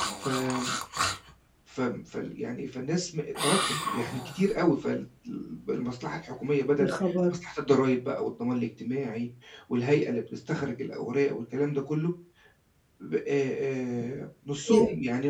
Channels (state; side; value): identical; both; correlation 1.00